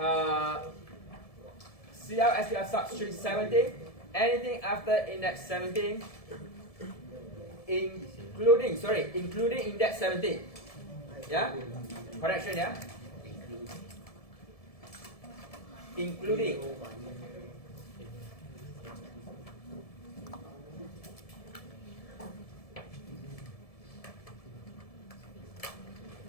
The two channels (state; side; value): late; right; 1.7 ms